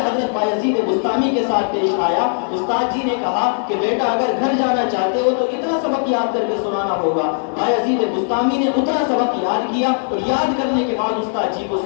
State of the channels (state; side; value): silent; right; digital silence